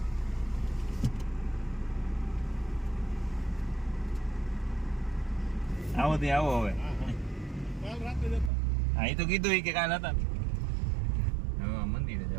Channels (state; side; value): drops out; left; at 8.5 s